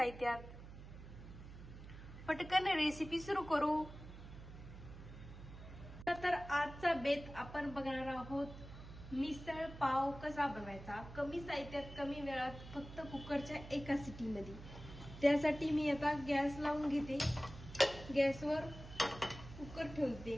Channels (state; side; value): noise; right; hum, 14 dB below the sound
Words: पटकन रेसिपी सुरू करू. तर आजचा बेत आपण बघणार आहोत मिसळ पाव कसा बनवायचा, कमी साहित्यात कमी वेळात, फक्त कुकरच्या एका सिटीमध्ये. त्यासाठी मी आता गॅस लावून घेते. गॅसवर कुकर